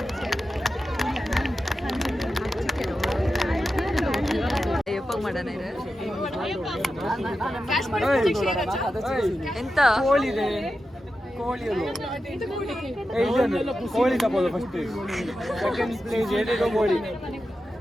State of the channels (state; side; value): normal; both; correlation 0.90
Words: ಎಂತ ಕೋಳಿ ತಪ್ಪೋದು ಫಸ್ಟ್ ಸೆಕೆಂಡ್ ಪ್ಲೇಸ್ ಏನೇನೋ ಕೋಳಿ